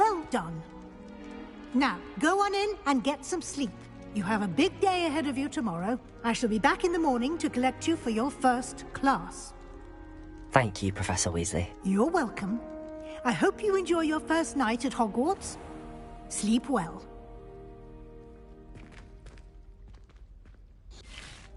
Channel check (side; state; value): both; identical; correlation 1.00